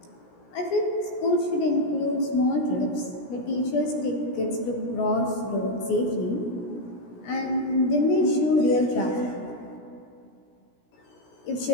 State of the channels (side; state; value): right; late; 17 ms